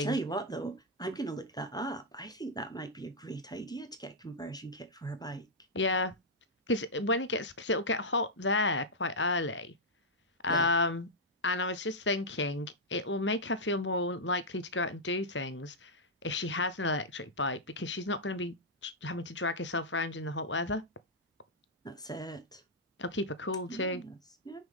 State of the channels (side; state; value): both; normal; correlation -0.06